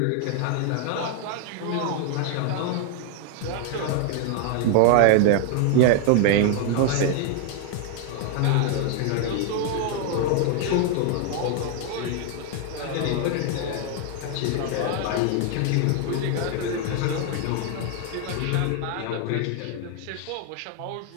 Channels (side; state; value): both; different; correlation 0.00